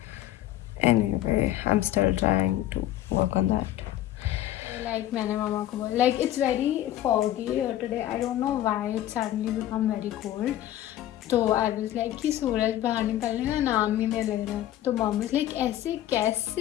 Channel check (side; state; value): right; quieter; 13.2 dB